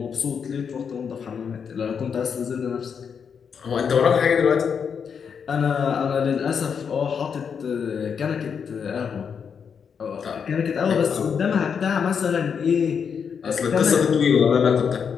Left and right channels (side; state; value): right; quieter; 6.7 dB